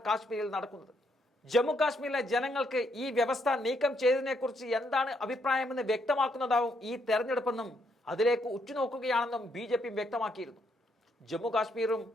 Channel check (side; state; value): both; normal; correlation 0.75